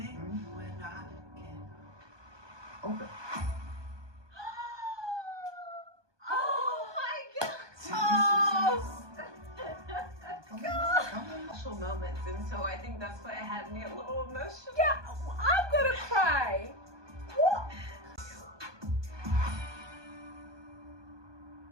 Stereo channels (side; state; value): left; late; 1.2 ms